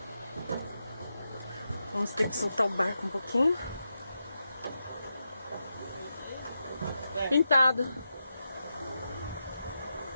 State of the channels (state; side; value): inverted; both; correlation -0.88